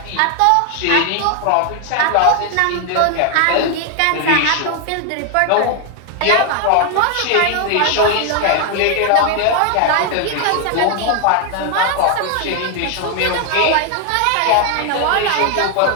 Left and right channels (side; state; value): both; different; correlation 0.00